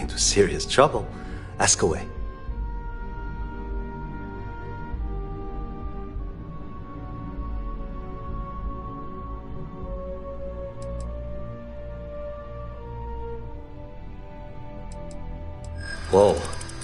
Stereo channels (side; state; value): both; identical; correlation 1.00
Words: into serious trouble, ask away. Whoa.